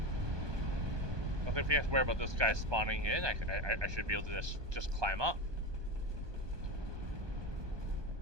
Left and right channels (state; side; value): late; left; 1.2 ms